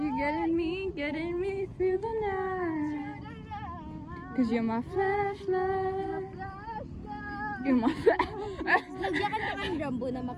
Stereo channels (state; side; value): identical; both; correlation 1.00